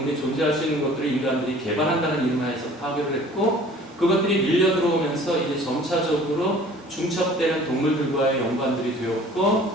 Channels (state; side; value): normal; both; correlation 0.49